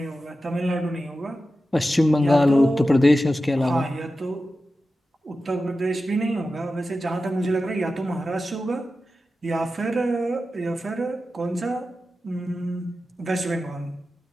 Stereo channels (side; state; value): both; normal; correlation 0.93